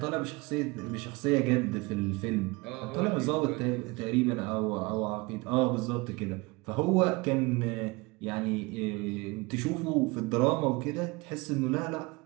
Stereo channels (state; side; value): quieter; left; 24.8 dB